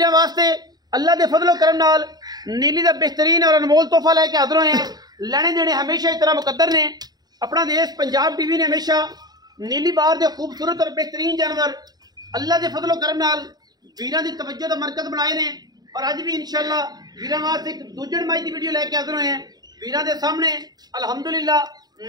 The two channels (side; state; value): left; late; 0.19 ms